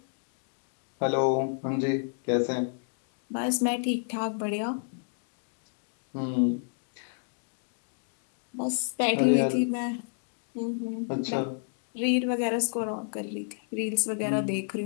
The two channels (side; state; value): right; silent; digital silence